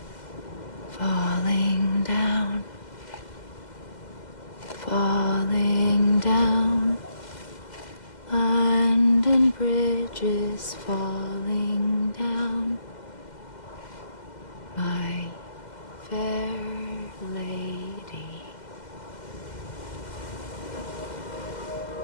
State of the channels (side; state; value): right; late; 2.0 ms